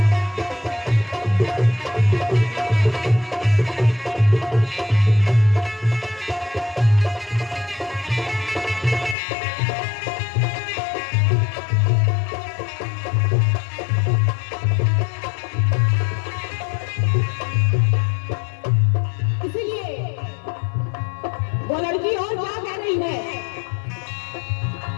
वो लड़की और क्या कह रही है,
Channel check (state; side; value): drops out; right; at 9.2 s